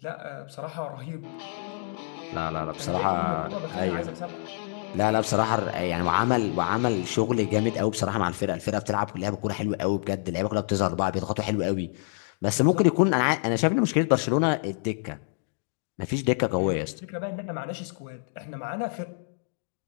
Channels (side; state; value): right; silent; digital silence